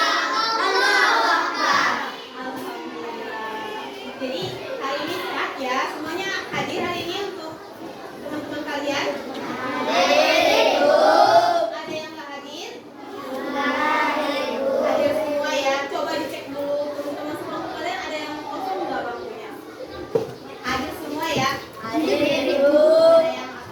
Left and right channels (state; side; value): identical; both; correlation 1.00